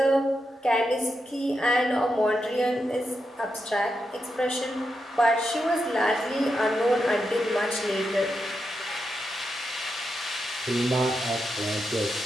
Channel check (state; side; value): normal; both; correlation 0.86